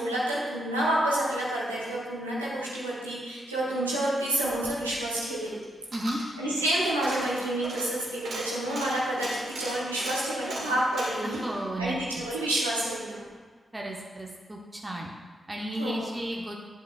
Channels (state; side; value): normal; both; correlation 0.76